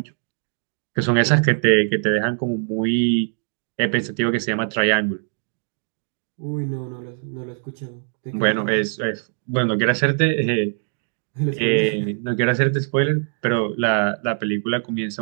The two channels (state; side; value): silent; left; 62 dB below the other